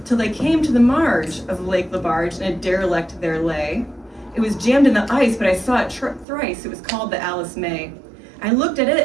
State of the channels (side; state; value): left; drops out; at 6.2 s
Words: Till they came to the marge of Lake LaBarge, and a derelict there lay. It was jammed in the ice, but I saw it thrice. It was called the Alice May. I looked at